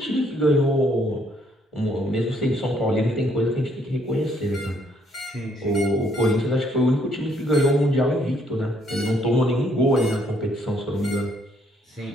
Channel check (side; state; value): both; normal; correlation 0.68